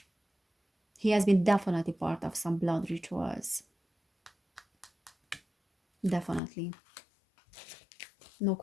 He has been definitely part of some blood rituals. Definitely. No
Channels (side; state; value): right; drops out; at 6.4 s